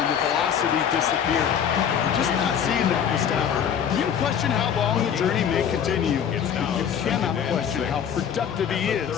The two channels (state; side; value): quieter; right; 8.2 dB